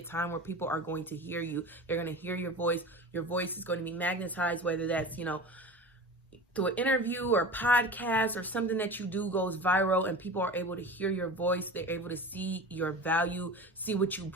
time where people are going to hear you. They're going to hear your voice. Your voice is going to be magnetized, whether that's, you know, through an interview or podcast or something that you do goes viral and people are able to hear your voice. They're able to see your value, see what you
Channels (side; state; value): both; normal; correlation 0.33